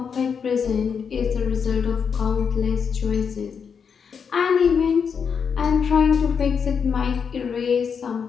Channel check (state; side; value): quieter; right; 6.5 dB